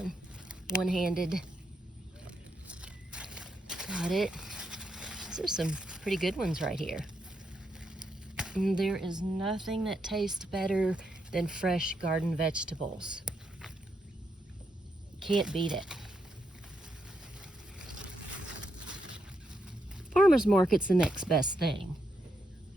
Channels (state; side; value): normal; both; correlation 0.81